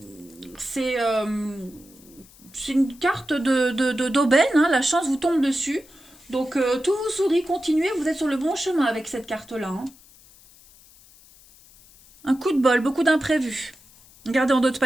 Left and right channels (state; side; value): noise; left; hiss, 25 dB below the sound